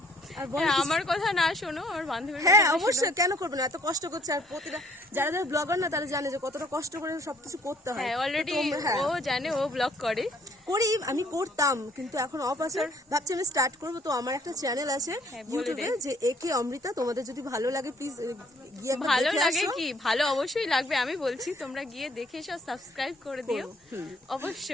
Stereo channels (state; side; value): normal; both; correlation 0.61